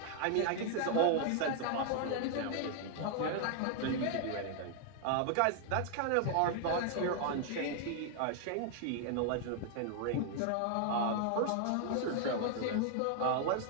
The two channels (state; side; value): different; both; correlation 0.00